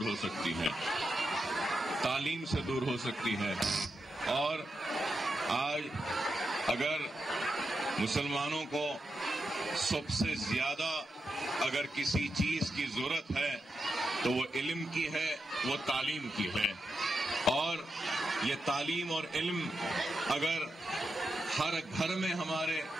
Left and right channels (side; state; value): both; normal; correlation 0.87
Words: ہو سکتی ہیں، تعلیم سے دور ہو سکتی ہے۔ اور آج اگر مسلمانوں کو سب سے زیادہ اگر کسی چیز کی ضرورت ہے تو وہ علم کی ہے، وہ تعلیم کی ہے۔ اور یہ تعلیم اور علم اگر ہر گھر میں ہمارے